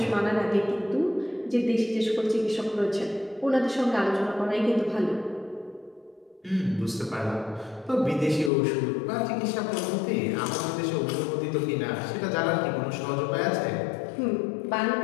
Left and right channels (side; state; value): right; drops out; at 8.5 s